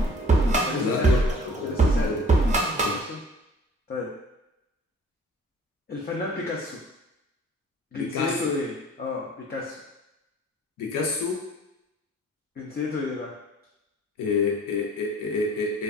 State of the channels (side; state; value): both; normal; correlation 0.50